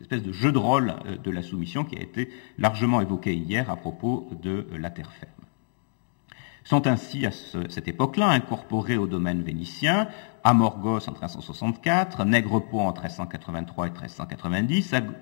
espèce de jeu de rôle de la soumission qui a été largement évoqué hier à propos de la terre ferme. Sont ainsi à cette époque-là incorporés au domaine vénitien Amorgos en 1364, Nègrepont en 1383 et 1390,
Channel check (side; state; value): right; silent; digital silence